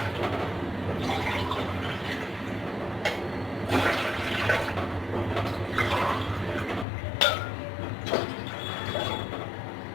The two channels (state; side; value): drops out; right; at 6.9 s